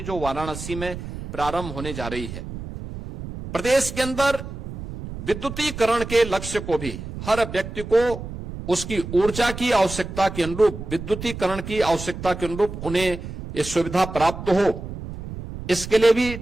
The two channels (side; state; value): right; noise; rumble, 10 dB below the sound